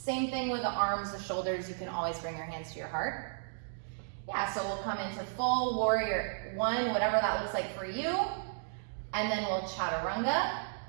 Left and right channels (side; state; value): left; silent; digital silence